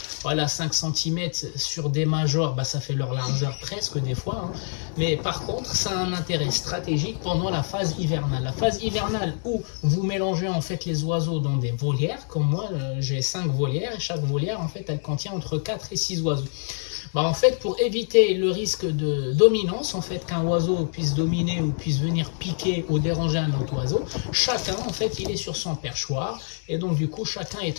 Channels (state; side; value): silent; right; 61 dB below the other